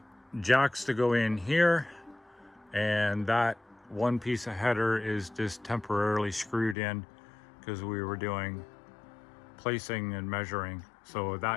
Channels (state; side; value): drops out; right; at 6.8 s